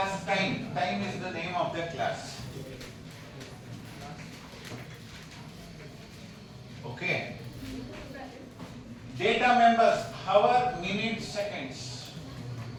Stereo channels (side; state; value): both; identical; correlation 1.00